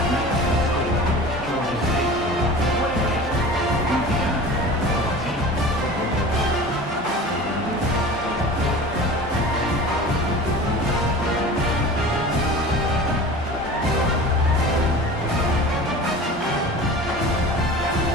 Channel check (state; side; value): normal; both; correlation 0.37